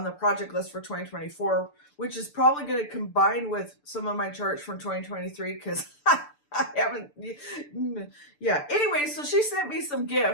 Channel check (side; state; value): right; late; 6.8 ms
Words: the project list for 2024, which is probably going to combine with some of my charts from 2023 because I haven't. Yeah. Anyway, so she sent me some